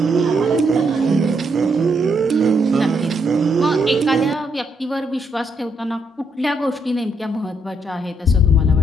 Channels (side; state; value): both; normal; correlation 0.76